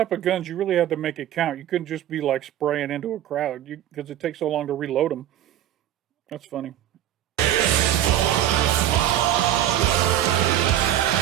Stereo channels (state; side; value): quieter; left; 11.8 dB